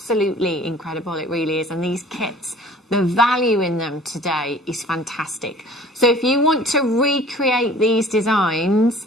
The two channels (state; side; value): normal; both; correlation 0.49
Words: incredible, it really is. And these kits, the value in them today is fantastic. So if you want to recreate these designs,